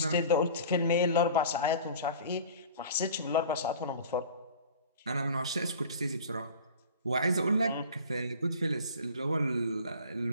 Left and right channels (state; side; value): inverted; both; correlation -0.42